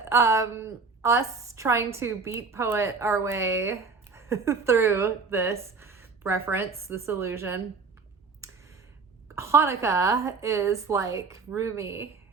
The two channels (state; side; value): quieter; left; 4.6 dB